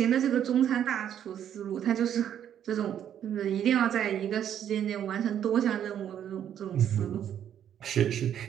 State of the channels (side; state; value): left; quieter; 9.8 dB